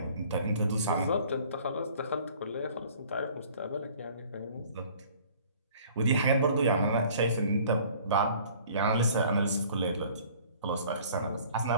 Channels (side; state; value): both; inverted; correlation -0.52